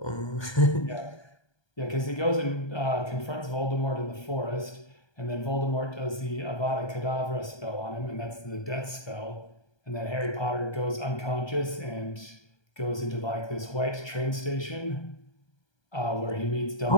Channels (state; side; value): late; right; 1.2 ms